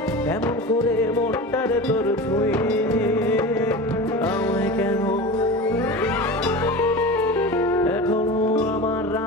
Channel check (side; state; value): both; normal; correlation 0.30